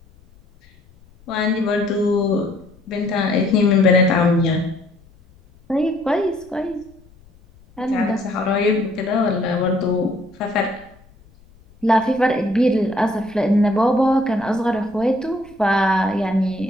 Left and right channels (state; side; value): noise; left; rumble, 28 dB below the sound